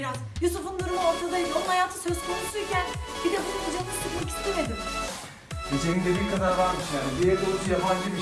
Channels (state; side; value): identical; both; correlation 1.00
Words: Yusuf'un durumu ortadaydı. Onun hayatı söz konusuyken bir de bunun canını sıkmak istemedim. Gecenin dediği kadar varmış yani. Bir evde oturup